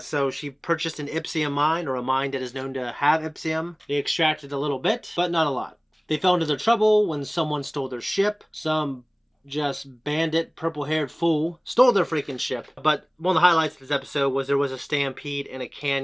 So she purchased an Ipsium mine, or a mine that is known to have Ipsium. They extracted a little bit, but not a lot. They fell into their trouble when someone stole their ship. Some just bandit, purple-haired fool stole their freaking ship. But one of the highlights of this episode was there was a stampede in a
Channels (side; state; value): both; identical; correlation 1.00